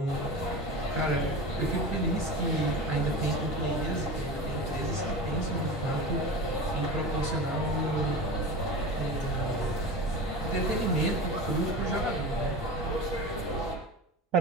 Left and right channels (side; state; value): both; normal; correlation 0.29